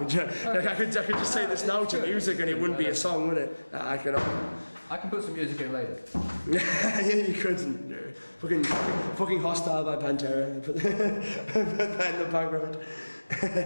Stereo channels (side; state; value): both; inverted; correlation -1.00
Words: I could just say this now to music and it wouldn't be a song, would it? I can put some music in later. Yeah, you couldn't. Fucking Hostile by Pantera. Put that in the background.